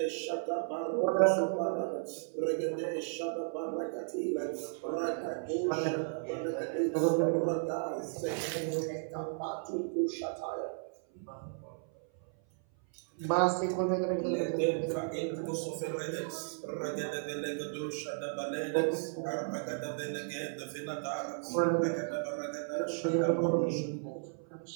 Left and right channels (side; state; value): left; silent; 55 dB below the other